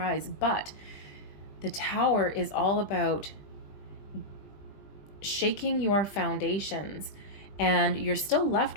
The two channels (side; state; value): right; late; 20 ms